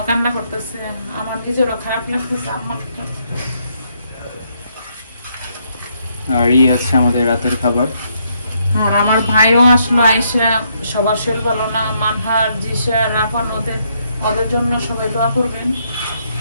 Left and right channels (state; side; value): inverted; both; correlation -0.74